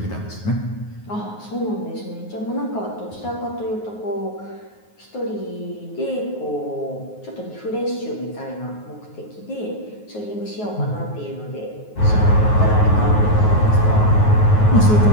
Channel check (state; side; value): late; right; 9.4 ms